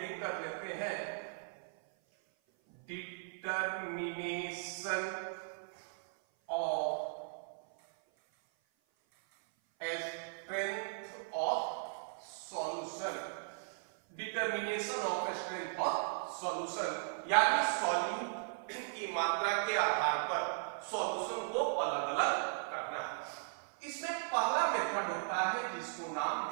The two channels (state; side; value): silent; left; 53 dB below the other